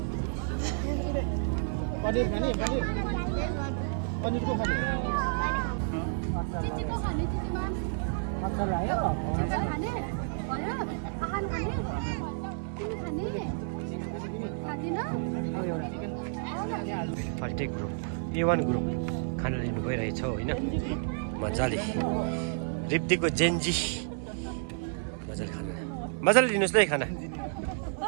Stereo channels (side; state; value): left; silent; 57 dB below the other